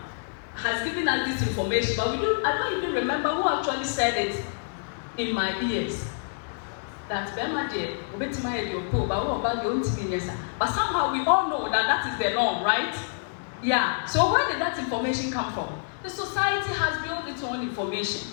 has given us this information, but I don't even remember who actually said it in my ears. That Bemade, but somehow we all know that that is the norm, right? Yeah. So where did that information come from? The society has built its own information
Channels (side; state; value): right; silent; 60 dB below the other